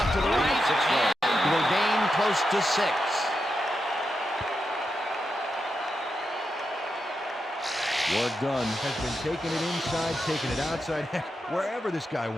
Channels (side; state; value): both; normal; correlation 0.86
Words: to the right, and will gain close to 6. Work done has been taking it inside, taking it outside, heck, wherever this guy